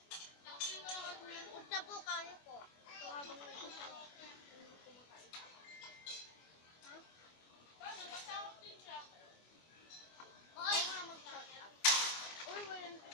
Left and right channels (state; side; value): late; right; 24 ms